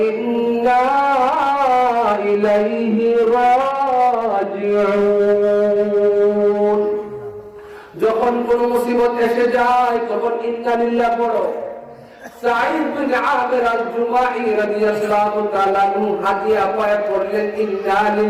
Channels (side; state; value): both; identical; correlation 1.00